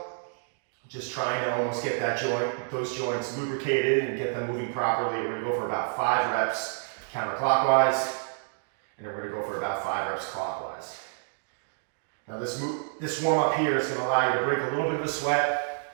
Just trying to almost get that those joints lubricated and get them moving properly. We're gonna go for about 5 reps counterclockwise, and then we're gonna go for about 5 reps clockwise. Now this warm up here is gonna allow you to break a little bit of a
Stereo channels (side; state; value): left; silent; digital silence